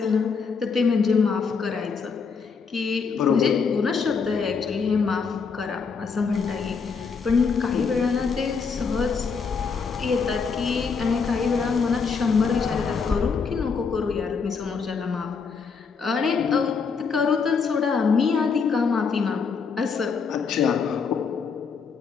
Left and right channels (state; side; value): quieter; right; 5.4 dB